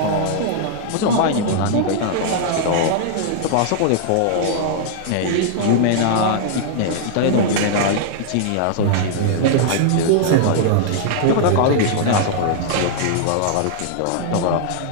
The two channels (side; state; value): both; different; correlation -0.01